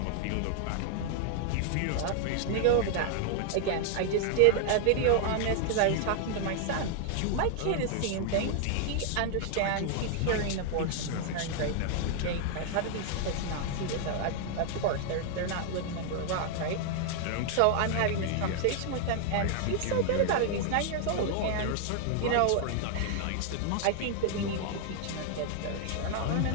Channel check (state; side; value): different; both; correlation 0.00